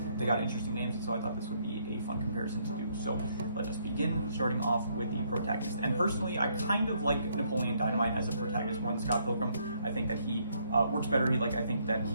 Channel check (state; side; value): inverted; both; correlation -0.71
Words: They got interesting names, and so I thought this would be a fun comparison to do. So let us begin, starting off with the protagonist. And personally, I kind of like Napoleon Dynamite as a protagonist more than Scott Pilgrim. I think that he works better. I think that